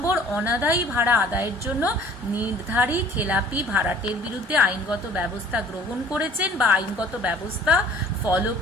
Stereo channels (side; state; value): both; normal; correlation 0.51